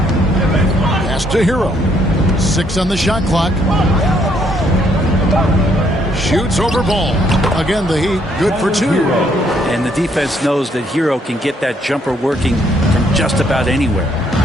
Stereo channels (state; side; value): normal; both; correlation 0.70